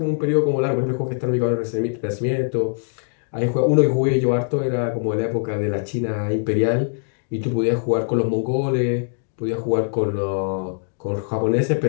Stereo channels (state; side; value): silent; right; digital silence